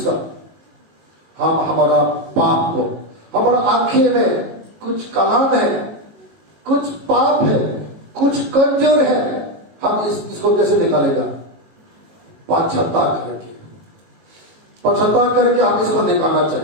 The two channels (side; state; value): left; late; 19 ms